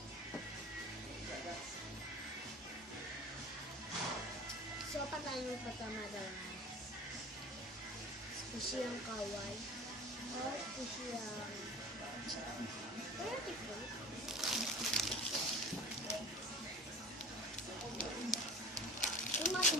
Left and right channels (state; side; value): normal; both; correlation 0.38